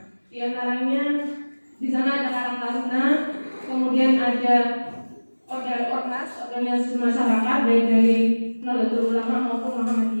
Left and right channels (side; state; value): both; inverted; correlation -1.00